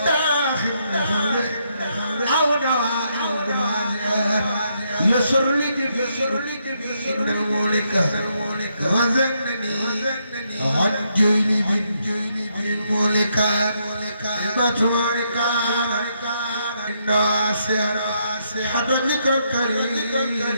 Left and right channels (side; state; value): both; inverted; correlation -0.77